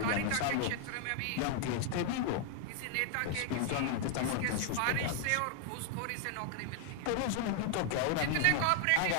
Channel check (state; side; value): different; both; correlation 0.00